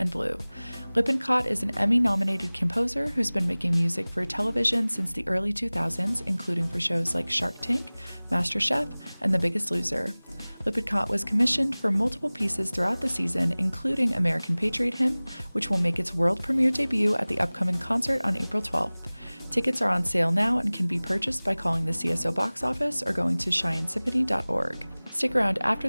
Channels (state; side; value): inverted; both; correlation -1.00